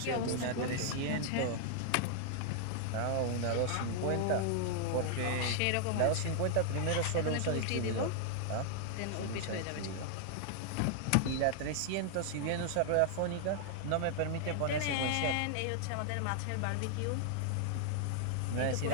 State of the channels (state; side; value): different; both; correlation 0.00